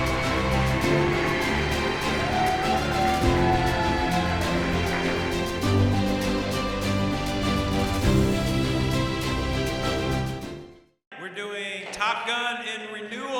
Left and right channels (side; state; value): both; identical; correlation 1.00